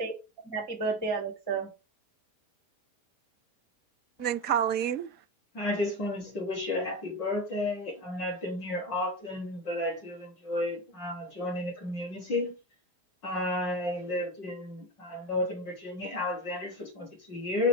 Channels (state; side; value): late; right; 5.5 ms